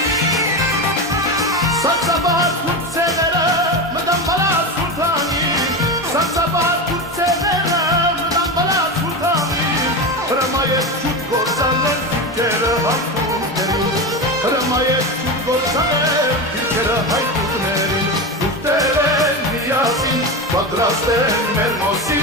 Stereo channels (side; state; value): both; normal; correlation 0.20